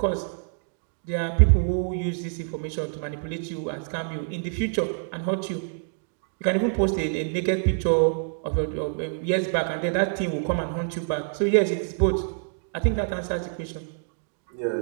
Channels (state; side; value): silent; left; digital silence